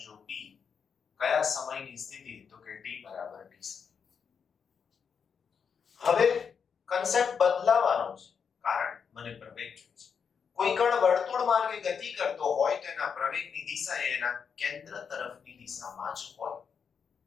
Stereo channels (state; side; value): quieter; right; 6.5 dB